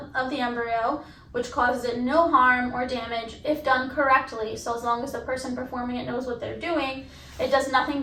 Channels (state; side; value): identical; both; correlation 1.00